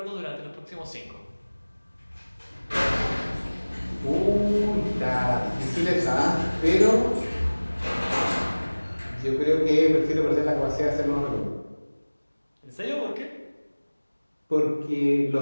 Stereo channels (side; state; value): both; inverted; correlation -1.00